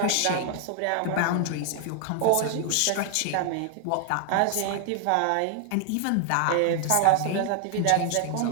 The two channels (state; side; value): different; both; correlation 0.00